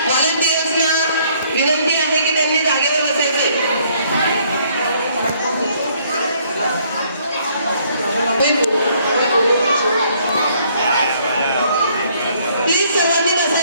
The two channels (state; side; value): inverted; both; correlation -0.65